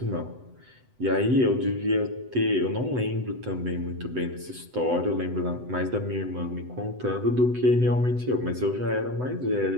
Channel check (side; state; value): left; late; 7.9 ms